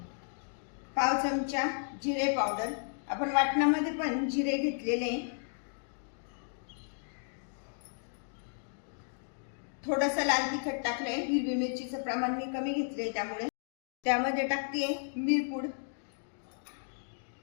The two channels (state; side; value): silent; right; digital silence